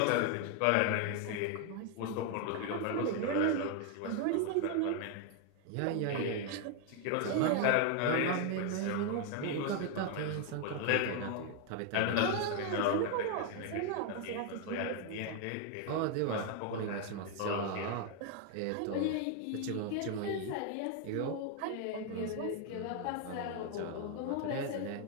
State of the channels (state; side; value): different; both; correlation 0.01